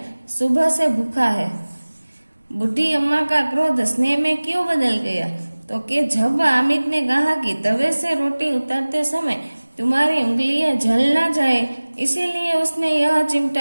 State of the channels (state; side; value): inverted; both; correlation -1.00